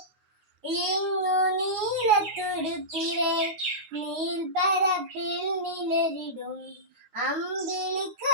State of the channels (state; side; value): late; left; 9.5 ms